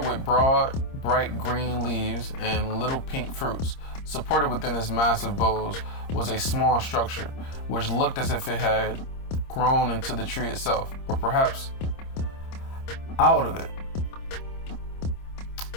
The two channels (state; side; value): late; right; 26 ms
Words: with broad, bright green leaves and little pink fruits. Supported within its massive boughs was a small structure, which looked as if it had grown into the tree itself, or perhaps out of it.